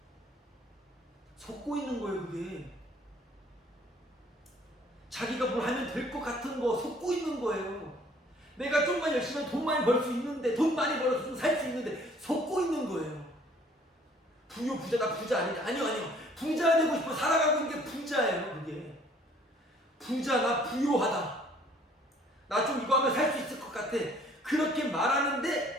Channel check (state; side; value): normal; both; correlation 0.58